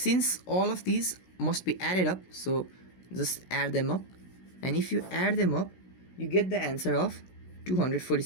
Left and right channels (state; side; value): late; right; 16 ms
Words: all of these must be added up, so just add them up, and if you add them up, you get the answer of